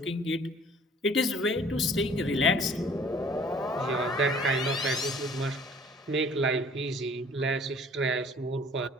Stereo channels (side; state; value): both; normal; correlation 0.53